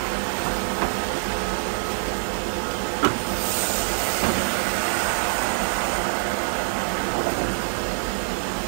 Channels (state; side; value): silent; left; digital silence